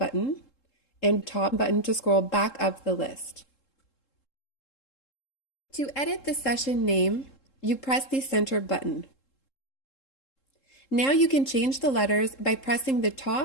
and top button to scroll back up the list. To edit the session name, you press the center button. Now you can change the letters by pressing the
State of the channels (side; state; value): right; late; 3.7 ms